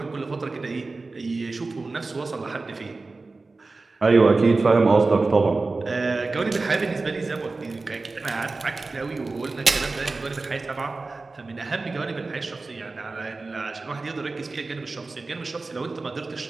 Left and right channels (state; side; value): quieter; left; 3.6 dB